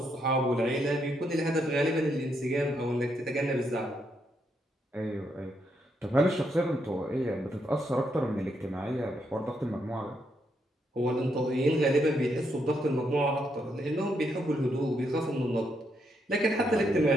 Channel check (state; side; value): normal; both; correlation 0.78